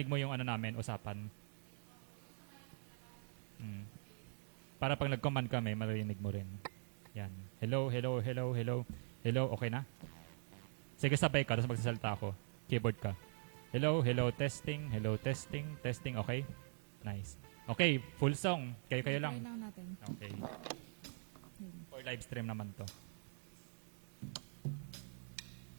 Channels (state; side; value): silent; left; digital silence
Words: mo yung namin, usapan. Para pag nag-command kami, marinig mo rin. Yan. Hello, hello, hello, hello. Hello, okay na? Sige, sabay ka, tapos magsasalita ako. Keyboard ka. Hello, hello, testing, testing, okay? Nice. Okay, full song. Kayo lang. Try lang natin. Okay. For live stream naman to.